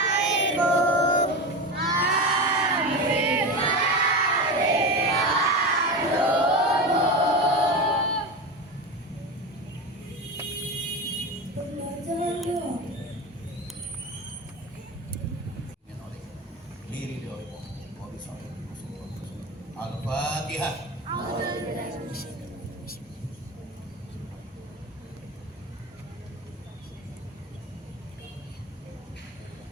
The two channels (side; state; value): both; normal; correlation 0.23